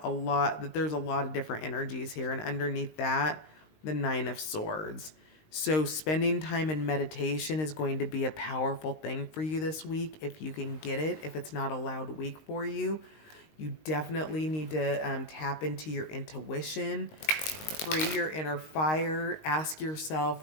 that there's a lot of different energies here, and underneath that, the Nine of Swords. So spending time in meditation is going to be a powerful thing for you this week if you can get it. If it's not a loud week for you, you definitely need to tap into your intuition, free your inner fire, ask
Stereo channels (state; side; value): late; right; 19 ms